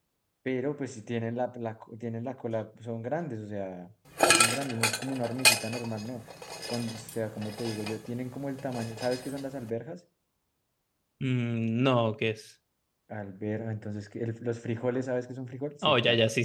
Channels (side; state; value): both; identical; correlation 1.00